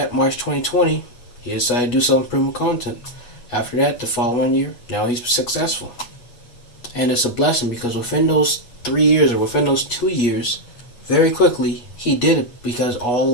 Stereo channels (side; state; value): right; late; 8.2 ms